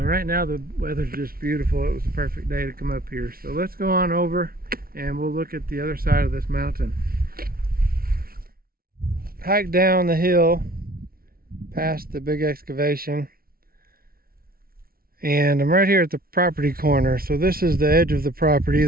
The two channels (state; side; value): late; left; 0.43 ms